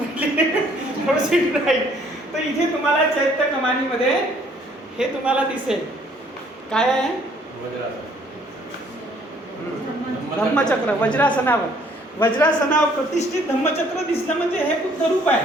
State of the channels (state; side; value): normal; both; correlation 0.61